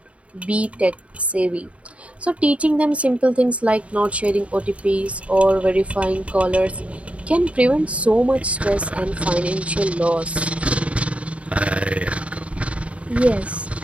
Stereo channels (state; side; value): late; left; 0.064 ms